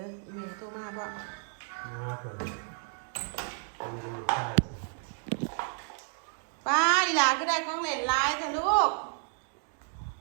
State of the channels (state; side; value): silent; left; 56 dB below the other